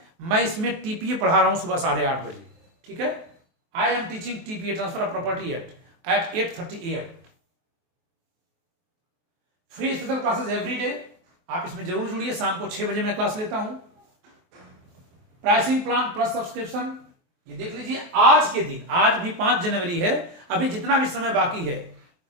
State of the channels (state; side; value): late; left; 23 ms